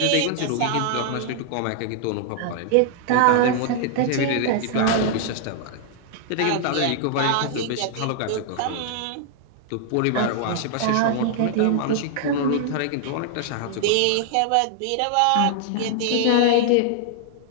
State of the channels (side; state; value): both; different; correlation 0.00